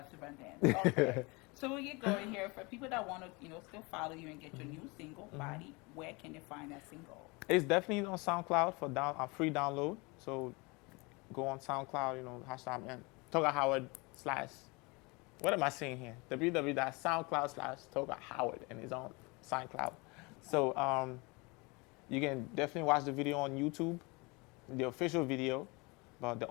dance. Okay, so we get going here. For people that want to, still follow you and get your new single, Body, where can they find that single? It's definitely on SoundCloud for free download. So go on SoundCloud, hashtag Togar Howard / what am I saying here? www.soundcloud/Togar Howard, and it's on SoundCloud. Okay. So you can definitely watch the video on YouTube, the official video. But the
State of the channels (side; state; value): right; quieter; 27.0 dB